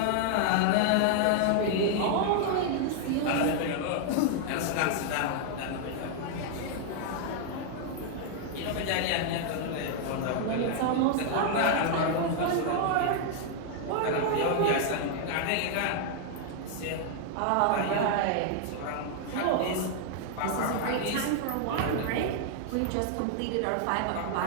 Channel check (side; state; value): both; different; correlation 0.00